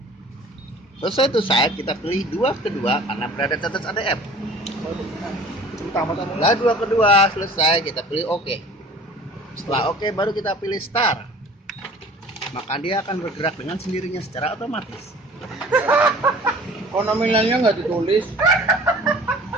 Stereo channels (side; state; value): both; normal; correlation 0.47